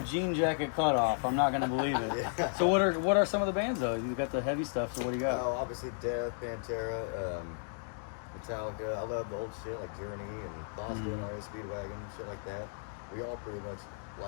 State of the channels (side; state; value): right; silent; digital silence